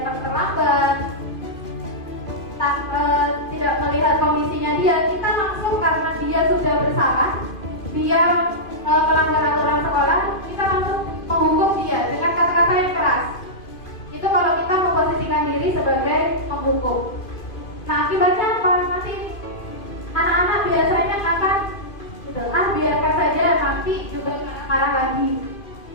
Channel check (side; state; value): right; late; 2.5 ms